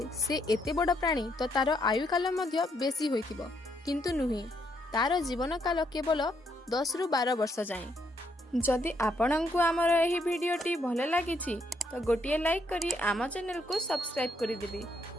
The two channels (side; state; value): both; normal; correlation 0.74